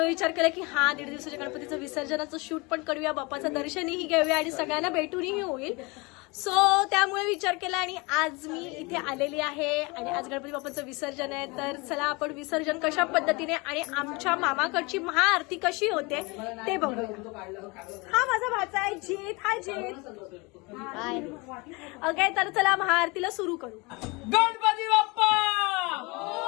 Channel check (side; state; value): right; quieter; 26.8 dB